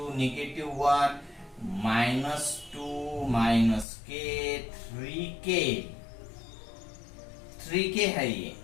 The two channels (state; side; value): drops out; right; at 3.9 s